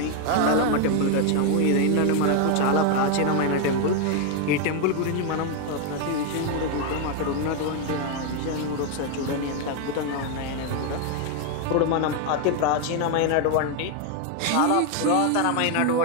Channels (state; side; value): different; both; correlation 0.01